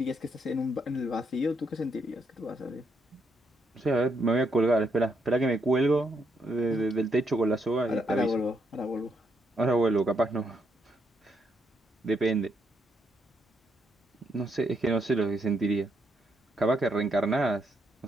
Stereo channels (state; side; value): normal; both; correlation 0.77